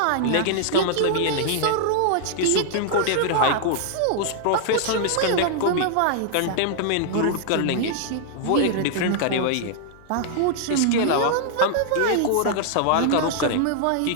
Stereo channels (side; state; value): both; different; correlation -0.01